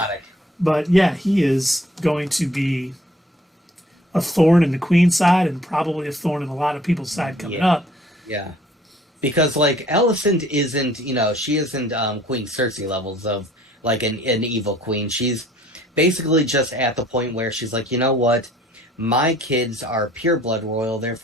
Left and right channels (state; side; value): normal; both; correlation 0.57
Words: but yeah, he is going to be a thorn in the Queen's side and probably a thorn in a lot of people's side coming up. Yeah. Because, like, Alicent isn't, she isn't Queen Cersei levels of, like, an evil queen. She's basically just at the point where she's like, you know what? My kids are pureblood royal,